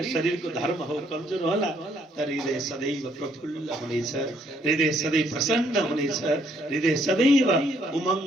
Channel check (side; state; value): both; normal; correlation 0.69